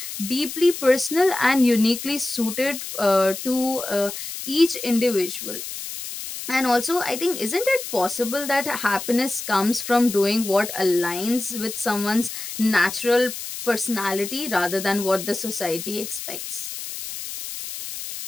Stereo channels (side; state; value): left; noise; hiss, 8 dB below the sound